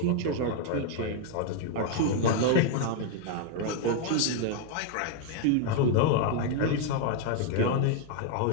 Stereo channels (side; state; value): both; different; correlation 0.01